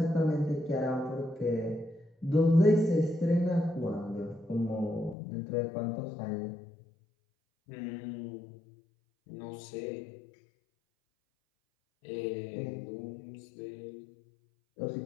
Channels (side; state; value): right; drops out; at 5.2 s